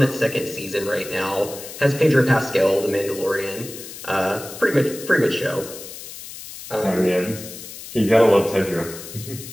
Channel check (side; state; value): left; noise; hiss, 13 dB below the sound